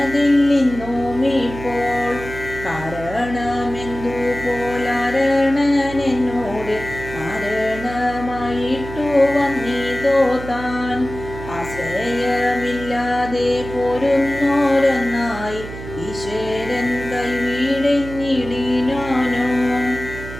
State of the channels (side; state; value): right; noise; hum, 11 dB below the sound